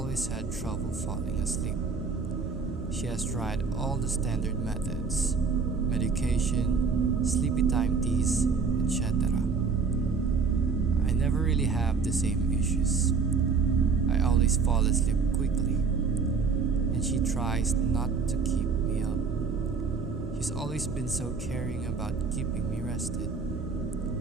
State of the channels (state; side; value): quieter; left; 5.1 dB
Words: had trouble falling asleep. She has tried all the standard methods, medication, sleepy time teas, etc. I never really have the same issues. I always fall asleep quickly, and she tries not to keep me up. She's always been so caring about keeping me rested.